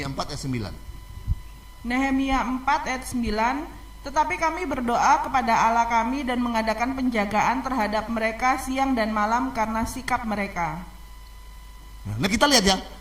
4 ayat 9. Nehemia 4 ayat 9, tetapi kami berdoa kepada Allah kami dan mengadakan penjagaan terhadap mereka siang dan malam karena sikap mereka. Nah, kita lihat ya,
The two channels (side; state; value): both; identical; correlation 1.00